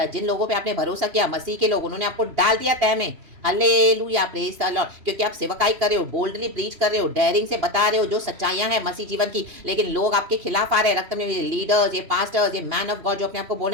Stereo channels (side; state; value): left; late; 3.0 ms